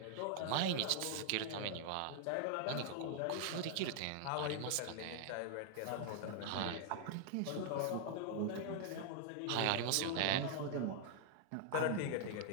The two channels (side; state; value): both; different; correlation 0.00